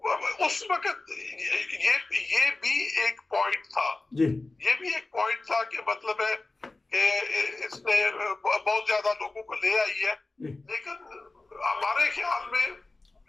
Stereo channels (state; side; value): quieter; right; 3.2 dB